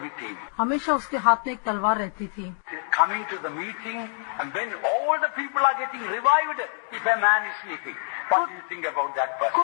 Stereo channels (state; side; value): silent; right; 58 dB below the other